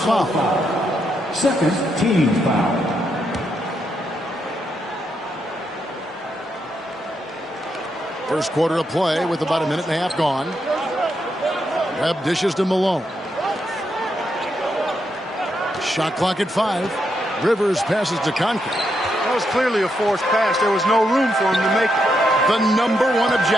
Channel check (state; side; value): normal; both; correlation 0.81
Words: Second team foul. First quarter of play with about a minute and a half gone. Webb dishes to Malone. Shot clock at 5. Rivers passes to Conklin. That was clearly a forced pass. There was no room for him to make it. The number one